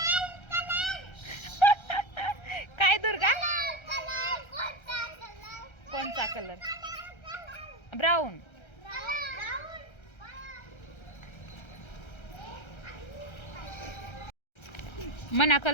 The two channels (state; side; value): late; right; 1.3 ms